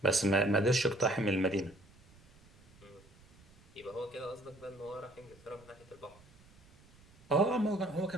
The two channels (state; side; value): noise; right; rumble, 25 dB below the sound